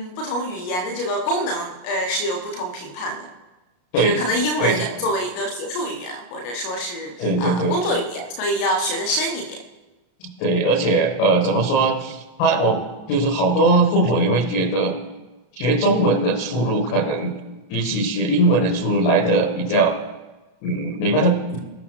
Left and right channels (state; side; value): late; right; 33 ms